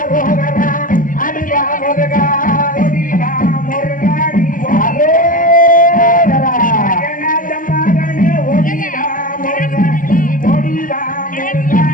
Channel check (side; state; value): right; late; 0.39 ms